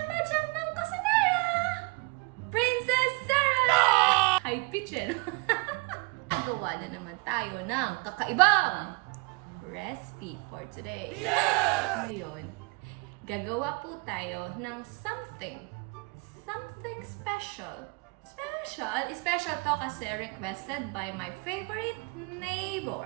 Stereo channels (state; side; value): quieter; left; 28.7 dB